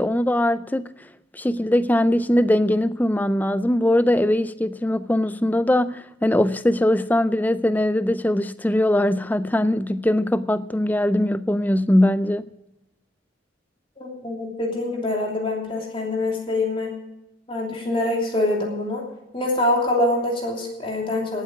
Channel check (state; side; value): normal; both; correlation 0.79